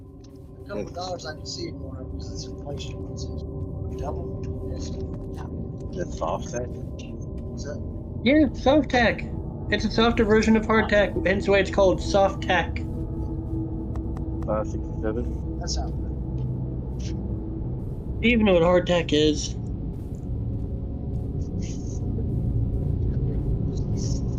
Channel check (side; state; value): both; identical; correlation 1.00